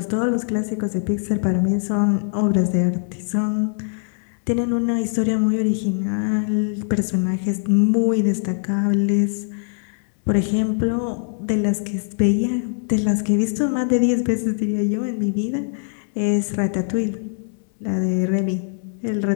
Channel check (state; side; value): silent; right; 56 dB below the other